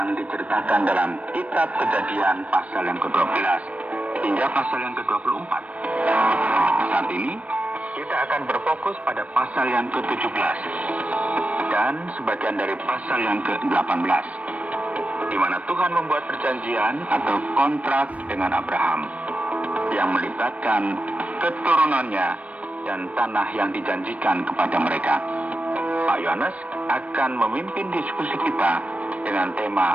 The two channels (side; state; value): left; late; 0.066 ms